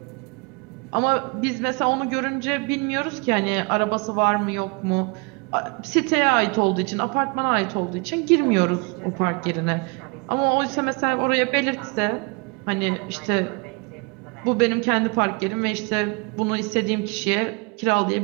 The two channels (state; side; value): quieter; left; 30.8 dB